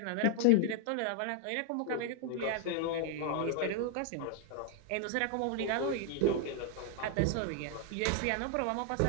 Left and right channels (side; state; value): both; different; correlation 0.00